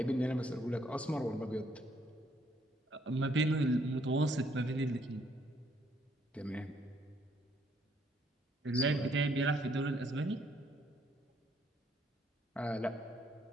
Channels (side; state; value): both; normal; correlation 0.69